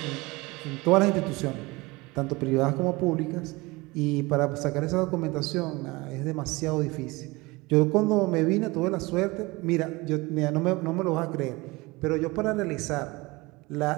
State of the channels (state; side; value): quieter; left; 22.9 dB